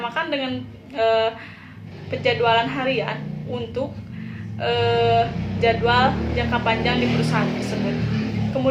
dengan penjadwalan harian untuk jadwal jangka panjang di perusahaan tersebut.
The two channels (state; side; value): identical; both; correlation 1.00